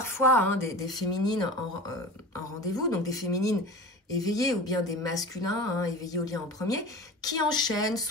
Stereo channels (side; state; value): both; normal; correlation 0.33